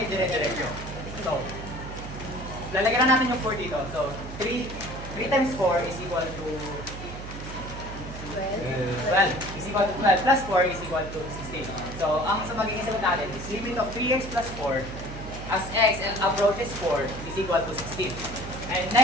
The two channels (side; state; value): right; noise; hum, 10 dB below the sound